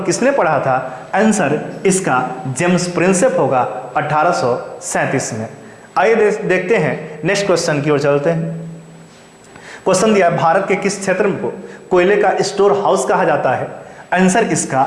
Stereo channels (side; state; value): both; identical; correlation 1.00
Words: किसने पढ़ा था। आंसर इसका जेम्स प्रिंसेप होगा 1837 में। आइए देखते हैं नेक्स्ट क्वेश्चन की ओर चलते हैं। क्वेश्चन दिया है भारत के किस क्षेत्र को कोयले का स्टोर हाउस कहा जाता है। आंसर इसका